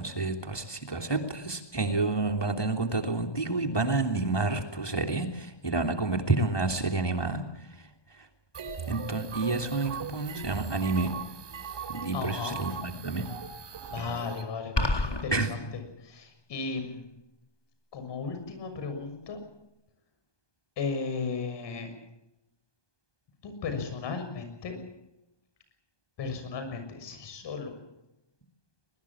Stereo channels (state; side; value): late; right; 1.2 ms